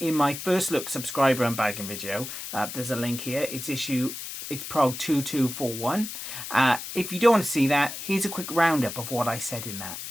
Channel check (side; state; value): left; noise; hiss, 8 dB below the sound